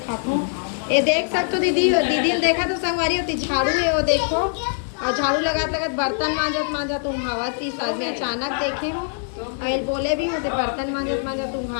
हूँ। ये देख सकते हो दीदी ने देखा तो संगवारी होती झाड़ू है वो देखो। और झाड़ू लगात लगात बर्तन मांजत मांजत उहावत थी साथ में अचानक देखे हो। और बोले भी होते बर्तन मांजत मांजत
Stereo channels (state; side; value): silent; right; digital silence